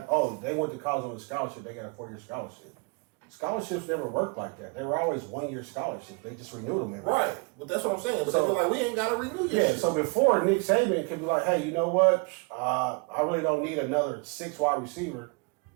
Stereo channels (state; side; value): quieter; left; 31.8 dB